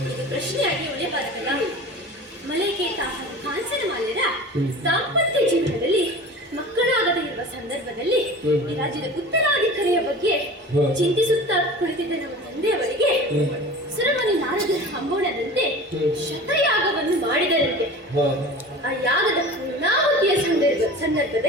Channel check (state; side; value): normal; both; correlation 0.37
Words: ಪ್ರಶ್ನೆಯಾಗಿ ಉಳಿಯಬಾರದಲ್ಲ. ಮಲೈಕೇತ ಹಾಗೂ ಕಾಂಚನ ಮಾಲ್ಯರ ದಾಂಪತ್ಯ ಜೀವನದಲ್ಲಿ ಮಕ್ಕಳಾಗದೇ ಇರುವ ಸಂದರ್ಭದಲ್ಲಿ ಈ ರಾಜ್ಯದ ಉತ್ತರಾಧಿಕಾರಿಯ ಬಗ್ಗೆ ಚಿಂತಿಸುತ್ತಾ ಕುಳಿತಿದ್ದ ನಮ್ಮ ತಂದೆಯವರಿಗೆ ಸುರಮುನಿ ನಾರದರ ಹಂಬೋಣದಂತೆ ಶತಯಾಗವನ್ನು ಮಾಡಿದರಂತೆ. ಆ ಯಾಗದ ಪೂರ್ಣಾಹುತಿಯ